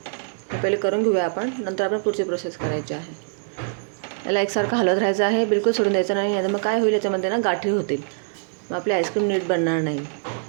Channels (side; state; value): left; silent; digital silence